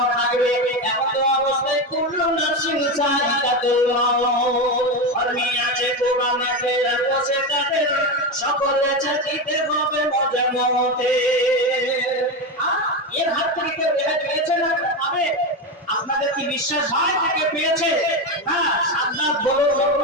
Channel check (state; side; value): normal; both; correlation 0.15